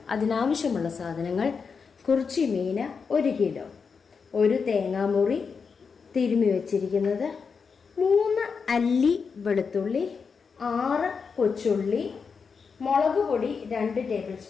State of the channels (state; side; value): quieter; right; 5.6 dB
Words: അതിനാവശ്യമുള്ള സാധനങ്ങൾ: കുറിച്ചി മീൻ 1 കിലോ, ഒരു തേങ്ങാമുറി തിരുമ്മി വെച്ചിരിക്കുന്നത്, 3 അല്ലി വെളുത്തുള്ളി, 6 കൊച്ചുള്ളി, മുളക് പൊടി 2 ടേബിൾ